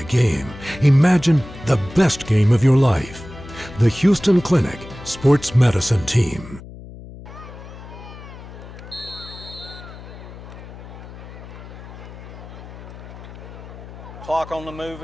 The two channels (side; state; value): left; noise; hum, 15 dB below the sound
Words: game. Imagine the best game of your life. The Houston Clinic Sports Medicine Team. Clock on the move